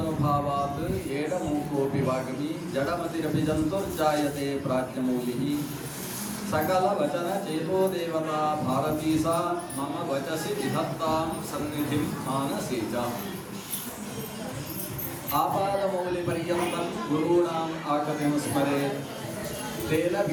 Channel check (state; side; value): identical; both; correlation 1.00